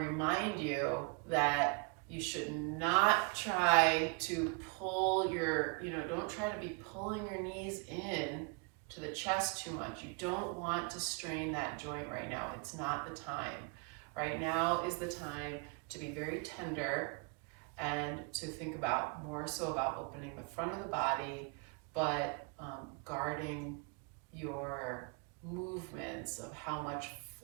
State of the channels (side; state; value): left; quieter; 34.5 dB